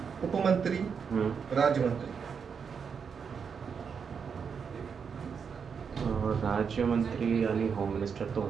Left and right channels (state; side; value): quieter; left; 6.4 dB